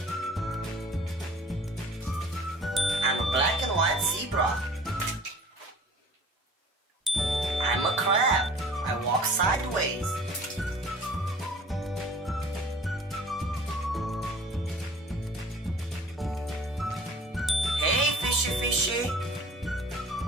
I'm a black and white zebra. I'm a crab. I walk sideways. Hey, fishy fishy.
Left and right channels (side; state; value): both; normal; correlation 0.47